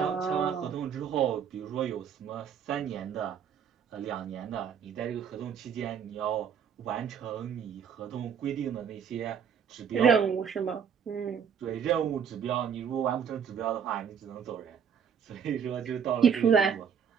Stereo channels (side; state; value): left; quieter; 7.4 dB